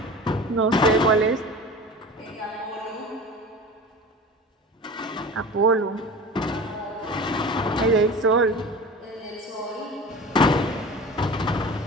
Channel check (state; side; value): normal; both; correlation 0.36